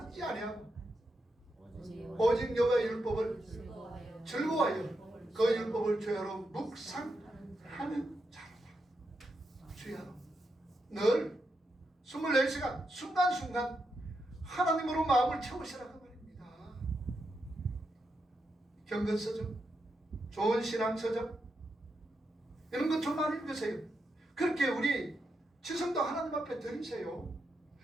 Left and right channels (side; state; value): both; normal; correlation 0.84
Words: 아니하고 오직 여호와의 율법을 즐거워하여 그 율법을 주야로 묵상하는 자로다. 주야로 늘 24시간 순간순간 하나님으로 마음을 채우시라 그 말입니다. 경건서적, 좋은 신앙서적 이런 것 좀 많이 읽으세요. 그렇게 우리 지성도 하나님 앞에 드리세요.